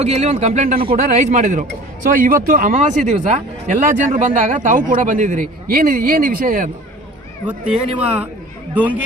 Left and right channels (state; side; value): normal; both; correlation 0.44